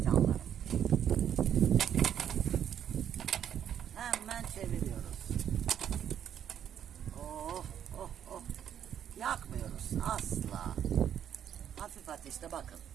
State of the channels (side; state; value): left; quieter; 9.4 dB